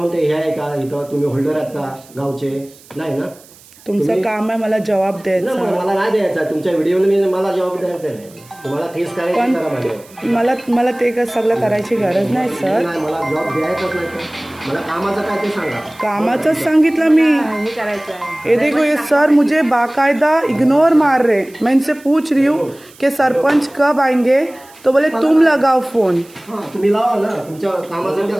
हे आहे का इथं? तुम्ही होल्डर आहात का गावचे? नाही ना. तुमचं काम आहे मला जवाब द्यायचा. मला नाही द्यायचा तुमच्या व्हिडिओने मला जवाब द्यायचा नाही. तुम्हाला केस करायची करा माझ्यावर. मला ते काय सगळं करायची गरज नाही सर. नाही मला जॉब द्यायचाच नाही तर मला कामाचं काय ते सांगा. कामाचंच सांगितलं मी. ये देखो ये सर मुझे बाकायदा इग्नोर मार रहे. मैं इनसे पूछ रही हूँ कि सरपंच कब आएंगे तो बोले तुम लगाओ फोन. तुम्ही लावा ना तुमच्या कामासाठी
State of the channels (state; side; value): noise; right; hiss, 25 dB below the sound